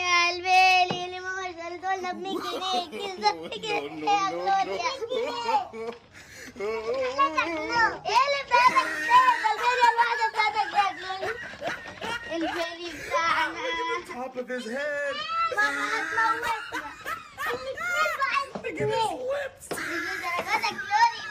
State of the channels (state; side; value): identical; both; correlation 1.00